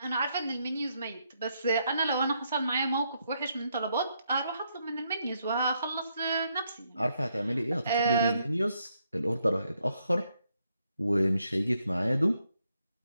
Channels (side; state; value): both; inverted; correlation -0.77